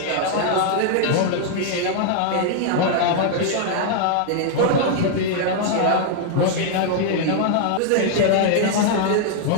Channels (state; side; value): different; both; correlation -0.01